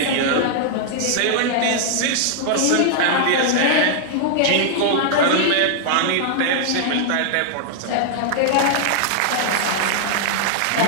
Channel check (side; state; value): both; different; correlation -0.01